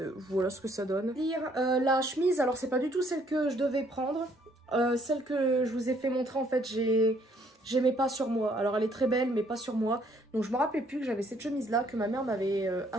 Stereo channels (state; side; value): normal; both; correlation 0.65